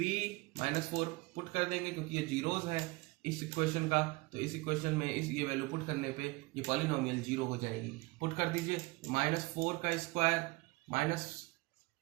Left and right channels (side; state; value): left; quieter; 23.5 dB